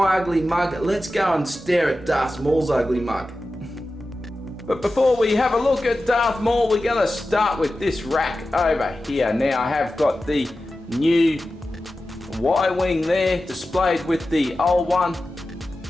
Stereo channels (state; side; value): normal; both; correlation 0.94